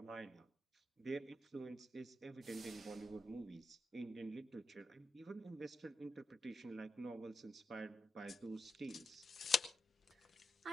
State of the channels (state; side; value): normal; both; correlation 0.86